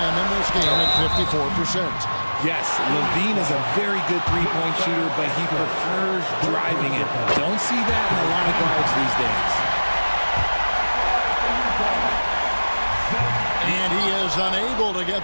in this game at 54%. Yes, Levine is a very good three-point shooter, but he prefers driving it. Don't see that in a lot of guards these days. And he is unable to get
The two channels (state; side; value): inverted; both; correlation -1.00